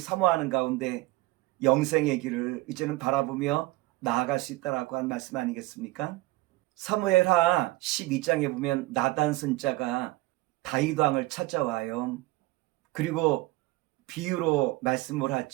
가운데 영생의 길을 이제는 바라보며 나아갈 수 있다라고 한 말씀 아니겠습니까? 사무엘하 12장에 보면 나단 선자가 다윗 왕을 찾아와요. 그리고 비유로 말씀을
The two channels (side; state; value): left; quieter; 19.7 dB